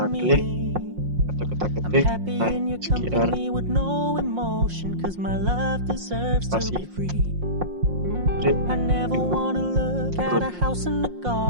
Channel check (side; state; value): left; late; 5.6 ms